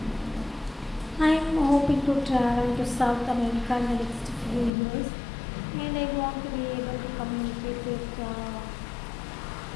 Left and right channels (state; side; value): drops out; right; at 4.7 s